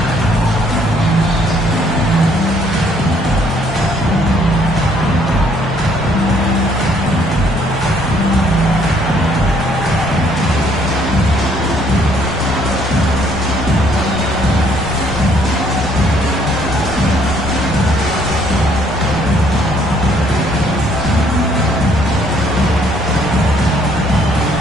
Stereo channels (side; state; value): both; normal; correlation 0.65